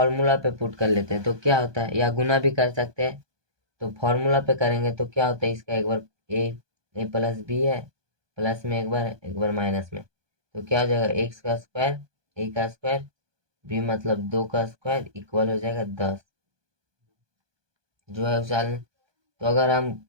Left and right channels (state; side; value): late; left; 1.2 ms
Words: पे पुट कर लेते हैं, तो क्या होता है, या गुना भी कर सकते हैं। तो फॉर्मूला पे करेंगे तो क्या होता है, इसका एक बार a+b है, प्लस में एक बार माइनस में, तो क्या हो जाएगा x का स्क्वायर a का स्क्वायर b मतलब 2 का स्क्वायर इक्वल हो जाएगा 10 जो है उछाल। तो अगर हम